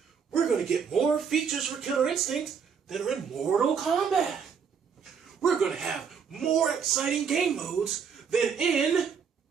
we're going to get more features for Killer Instinct that are in Mortal Kombat. We're going to have more exciting game modes than in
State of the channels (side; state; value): left; quieter; 6.6 dB